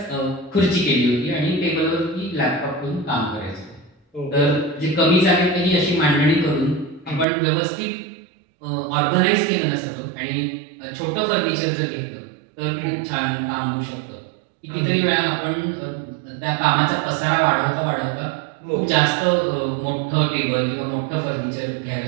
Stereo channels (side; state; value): left; drops out; at 7.2 s